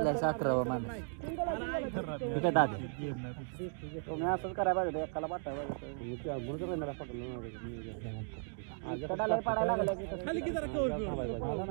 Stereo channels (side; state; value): left; silent; 54 dB below the other